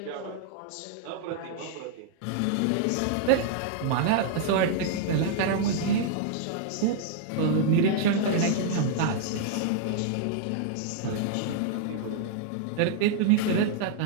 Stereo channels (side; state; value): both; different; correlation -0.01